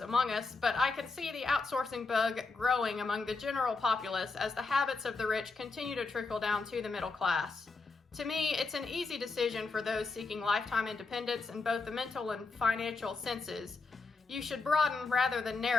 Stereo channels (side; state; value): right; quieter; 4.0 dB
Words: us, but I can see the outsourcing bug growing among the general populace as the habits of the rich continue to trickle down to the middle class. To me, it's an easy decision for those seeking lifetime independence in both the mental and financial senses. You should broaden rather than